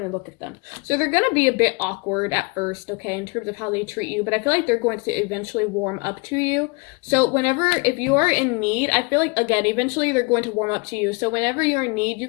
to look at them. So they're going to be a bit awkward at first, okay, in terms of how they treat you. But I feel like they're going to eventually warm up to you. So if you are in need, I feel like, again, eventually they're going to warm up to you. So whenever you're in need, you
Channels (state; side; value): quieter; right; 30.2 dB